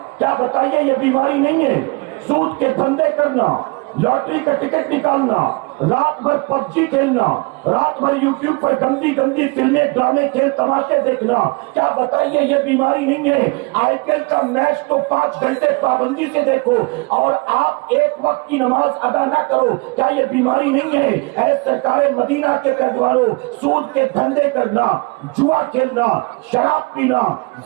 کیا بتائیے یہ بیماری نہیں ہے؟ سود کے دھندے کرنا، لاٹری کا ٹکٹ نکالنا، رات بھر پب جی کھیلنا، رات بھر یوٹیوب پر گندی گندی فلمیں، ڈرامے، کھیل تماشے دیکھنا، کیا بتائیے یہ بیماری نہیں ہے؟ آئی پی ایل کا میچ تو 5 گھنٹے پابندی سے دیکھو اور آپ ایک وقت کی نماز ادا نہ کرو، کیا یہ بیماری نہیں ہے؟ اے سرکار مدینہ کے پیروانوں، سود کے دھندے کرنا، جوا کھیلنا، شراب پینا،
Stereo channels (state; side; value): quieter; left; 28.5 dB